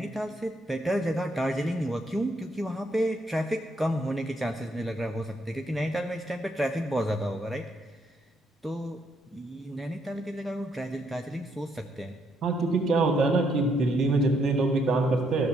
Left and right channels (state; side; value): normal; both; correlation 0.74